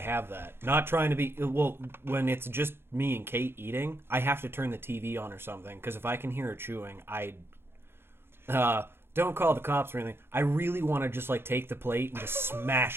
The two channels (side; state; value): left; late; 0.11 ms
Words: that. Not trying to be when it's just me and Kate eating, I have to turn the TV on or something because if I can hear her chewing, don't call the cops or anything. I really want to just like take the plate and just